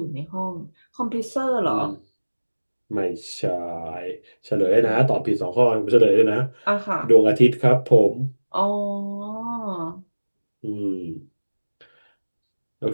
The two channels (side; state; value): both; inverted; correlation -1.00